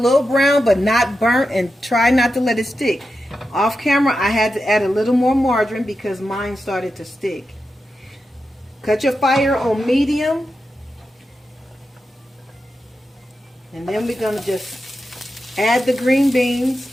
brown, but not burnt, and try not to let it stick. Off camera, I had to add a little more margarine because mine started to stick. Cut your fire on medium. And then we're going to just add the green beans.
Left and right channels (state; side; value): normal; both; correlation 0.89